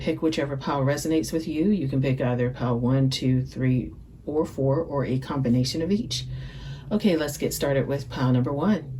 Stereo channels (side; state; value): both; identical; correlation 1.00